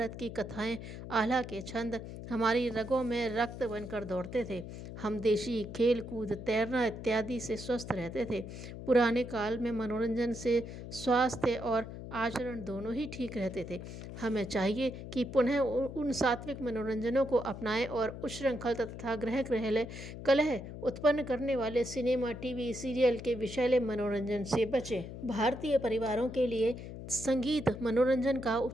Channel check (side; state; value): left; noise; hum, 10 dB below the sound